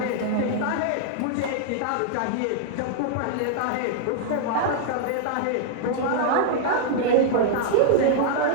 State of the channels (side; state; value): both; different; correlation -0.01